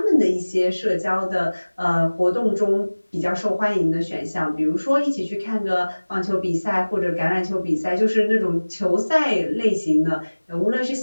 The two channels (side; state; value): both; inverted; correlation -1.00